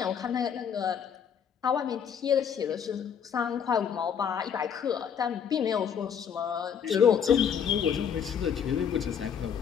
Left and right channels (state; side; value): quieter; right; 7.8 dB